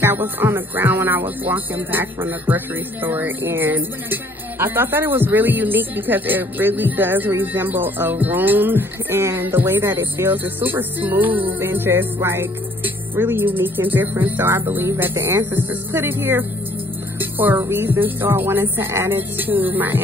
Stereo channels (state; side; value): normal; both; correlation 0.60